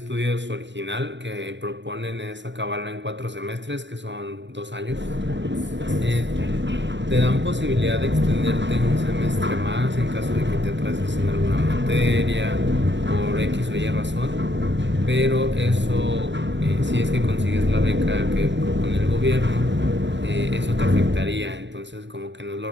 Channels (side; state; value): left; late; 0.53 ms